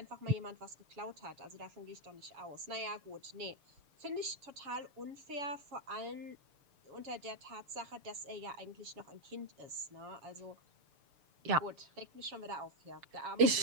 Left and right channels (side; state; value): left; late; 6.7 ms